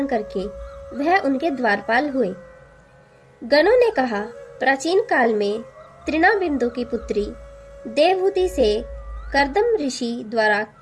करके वह उनके द्वारपाल हुए। गणों ने कहा, प्राचीन काल में तृणाबिंदु की पुत्री देवहूति से कर्दम ऋषि द्वारा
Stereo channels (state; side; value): identical; both; correlation 1.00